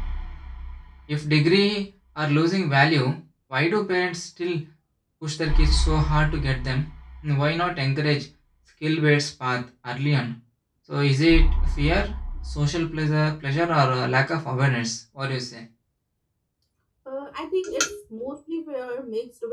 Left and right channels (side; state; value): both; identical; correlation 1.00